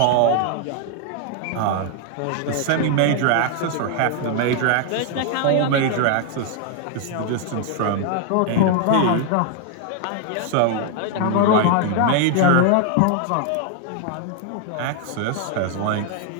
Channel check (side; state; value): both; different; correlation 0.00